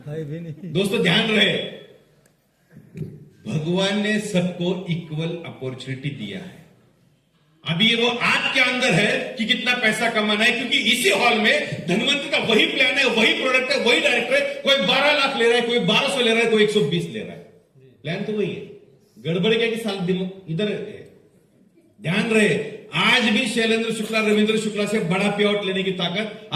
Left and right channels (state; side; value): identical; both; correlation 1.00